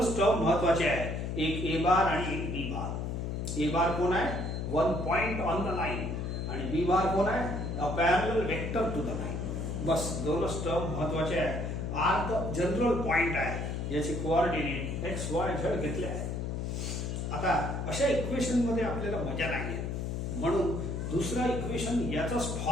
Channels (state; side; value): noise; left; hum, 3 dB below the sound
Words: टर्म महत्वाचे आहे, एक ए बार आणि एक बी बार. ए बार कोण आहे? 1 पॉइंट ऑन द लाईन. आणि बी बार कोण आहे? A parallel vector to the line. बस दोनच टर्म महत्वाचे आहे. आर तर जनरल पॉइंट आहे, याचे कोऑर्डिनेट एक्स वाय झेड घेतले आहे. आता अशा इक्वेशन मध्ये आपल्याला मजा नाही आहे, म्हणून दुसरा इक्वेशन याचाच